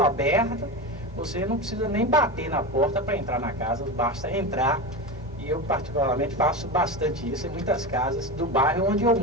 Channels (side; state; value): both; normal; correlation 0.22